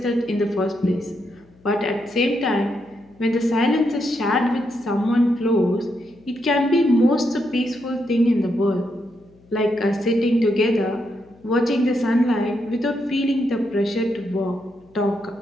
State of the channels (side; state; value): left; noise; hum, 29 dB below the sound